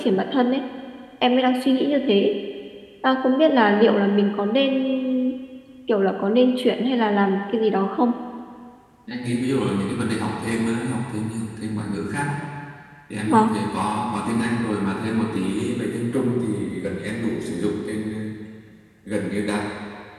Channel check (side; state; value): both; identical; correlation 1.00